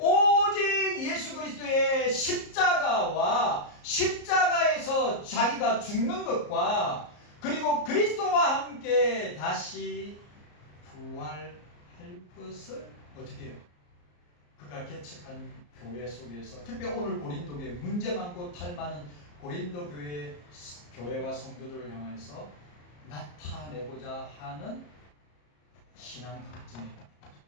예수 그리스도의 십자가와 십자가에서 자기가 죽는 것과 그리고 그리스도와 함께 다시 부활할 것을 어떻게 해요? 그가 개척한 교회 속에서, 특히 오늘 고린도 교회, 문제 많고 탈 많은 고린도 교회와 성도들을 향해서 나타내고자 하는 신앙 강증입니다.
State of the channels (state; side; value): late; right; 34 ms